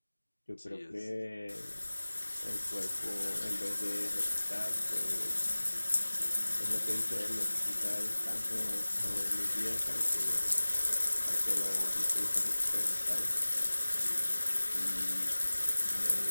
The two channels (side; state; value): both; inverted; correlation -1.00